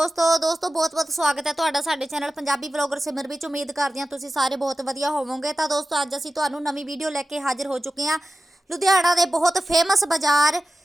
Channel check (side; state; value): both; normal; correlation 0.94